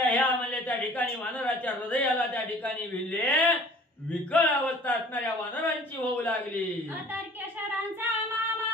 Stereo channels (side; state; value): both; normal; correlation 0.49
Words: ह्या म्हणजे त्या ठिकाणी वानराच्या हृदयाला त्या ठिकाणी भिडले. विकळ अवस्था असणाऱ्या वानरांची होऊ लागली. अतर्क्य शरांचा